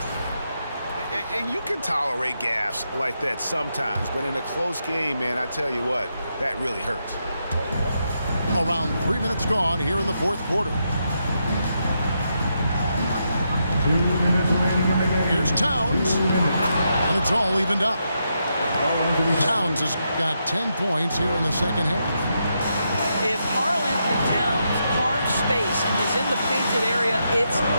And you can tolerate gaffes like that sometimes, but in a close game, man, I tell you what, that really hurts. Around 3 minutes gone here in the fourth quarter. 2 minutes remaining in the game. Here's Towns. And it's all evened up. Towns has got 10 points here in the second half. If Karl Anthony Towns carves space and is in the painted area, it's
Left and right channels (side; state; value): both; inverted; correlation -0.82